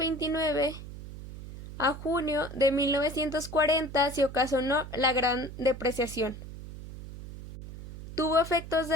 a junio de 1940 se ocasionó la Gran Depreciación. Tuvo efectos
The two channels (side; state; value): right; noise; hum, 12 dB below the sound